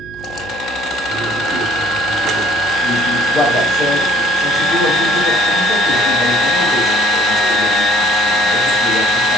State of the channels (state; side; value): noise; right; hum, 22 dB below the sound